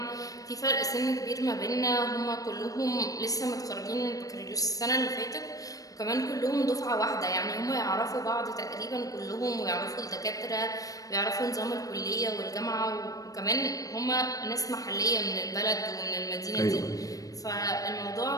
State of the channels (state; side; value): late; right; 0.17 ms